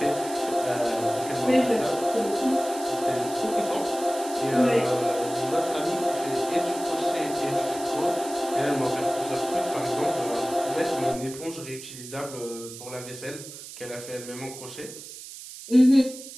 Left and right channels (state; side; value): noise; right; hiss, 13 dB below the sound